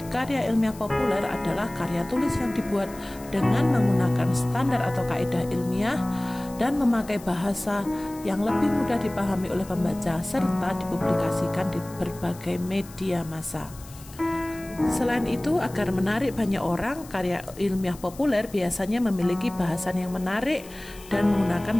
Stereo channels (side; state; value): left; noise; hiss, 20 dB below the sound